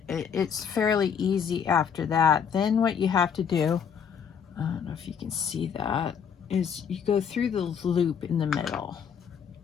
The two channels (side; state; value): right; quieter; 7.4 dB